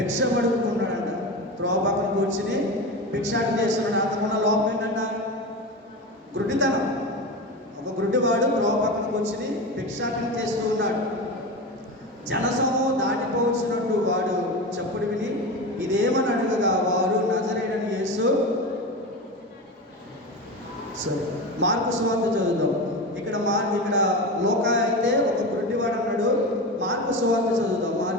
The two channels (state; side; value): normal; both; correlation 0.24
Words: పడుకుంటున్నాడంట. త్రోవ పక్కన కూర్చుని భిక్షాటన చేస్తున్నాడు. అంతకున్న లోపం ఏంటంట? గుడ్డితనం. ఒక గుడ్డివాడు త్రోవ పక్కన కూర్చుని భిక్షాటన చేస్తూ ఉన్నాడు. జనసమూహం దాటిపోవచ్చినట్టు వాడు చప్పుడు విని ఇదేమని అడగగా, వారు నజరేయుడైన యేసు. సరే, మార్కు సువార్త చదువుదాం. ఇక్కడ లోకా అయితే ఒక గుడ్డివాడు అన్నాడు. మార్కు సువార్త చదువుదాం.